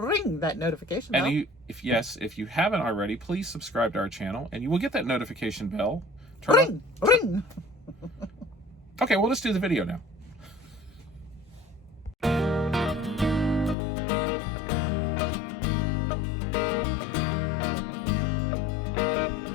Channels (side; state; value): right; drops out; at 13.8 s